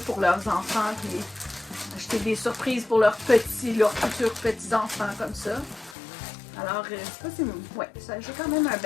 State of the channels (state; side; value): drops out; right; at 6.0 s